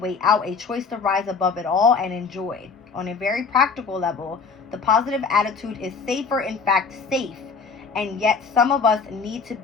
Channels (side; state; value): right; quieter; 5.1 dB